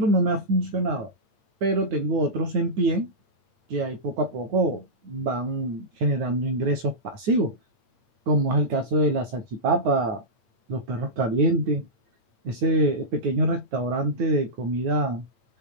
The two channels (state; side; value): late; left; 8.9 ms